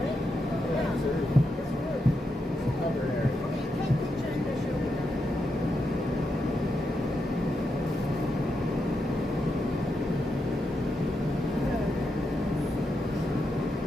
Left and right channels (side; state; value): both; normal; correlation 0.84